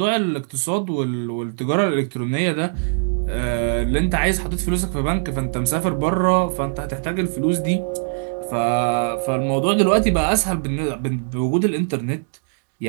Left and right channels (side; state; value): left; silent; digital silence